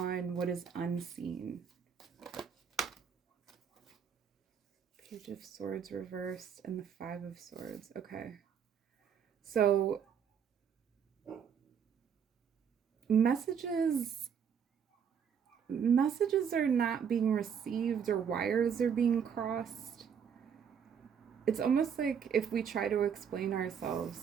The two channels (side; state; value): left; quieter; 7.5 dB